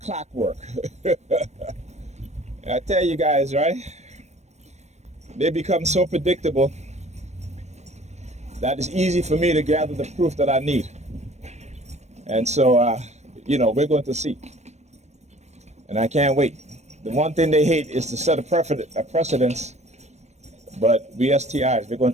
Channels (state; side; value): late; left; 0.32 ms